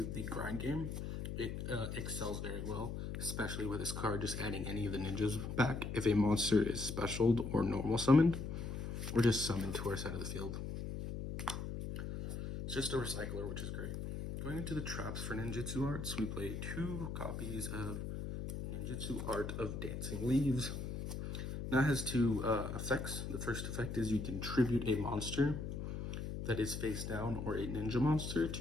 the grind game, it excels very well, especially with this card just adding any of the ninjas back if a monster is specialed or normal summoned, or just summoned to our side of the field. It's just a recycler, which is great. Going into the traps for ninjutsu arts, we play 2 copies of Ninjutsu Art of Dancing Leaves. Now it has 2 effects. The first effect is you can tribute a monster that is face down or a ninja monster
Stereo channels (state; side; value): noise; left; hum, 5 dB below the sound